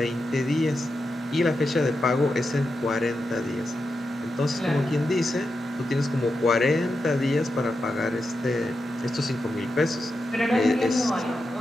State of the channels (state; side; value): normal; both; correlation 0.88